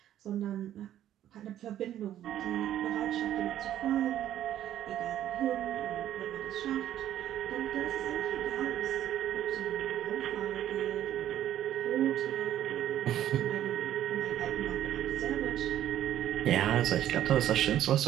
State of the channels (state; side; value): quieter; left; 11.7 dB